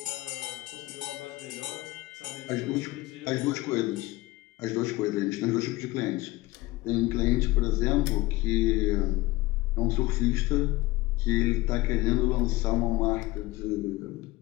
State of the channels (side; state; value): right; quieter; 19.5 dB